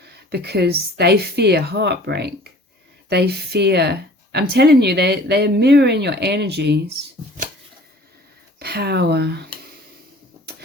because they fear heartbreak. They fear, I'm telling you, they're mirroring your energies. Power.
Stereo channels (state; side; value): normal; both; correlation 0.48